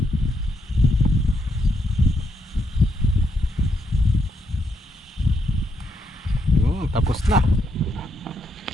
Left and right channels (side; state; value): both; normal; correlation 0.79